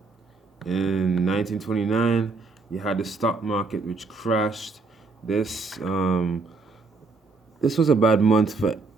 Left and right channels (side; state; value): left; quieter; 4.0 dB